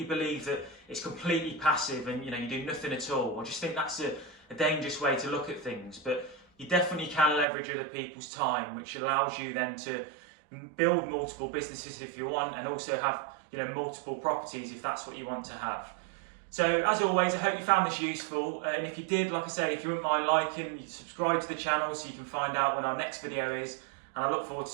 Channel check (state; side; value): drops out; left; at 7.5 s